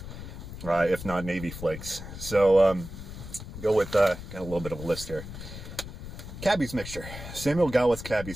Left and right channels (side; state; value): left; noise; rumble, 11 dB below the sound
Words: if not Navy Flakes. So, go with, got a little bit of a list here. Cabby's mixture, Samuel Gawith's